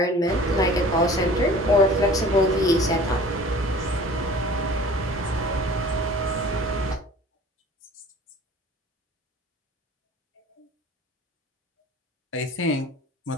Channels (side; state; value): both; normal; correlation 0.45